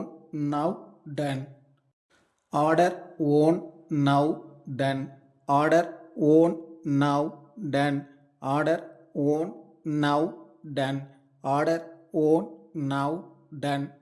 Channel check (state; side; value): identical; both; correlation 1.00